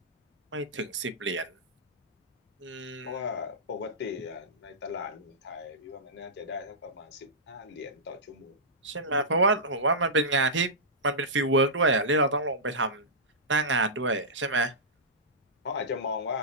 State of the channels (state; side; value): normal; both; correlation -0.16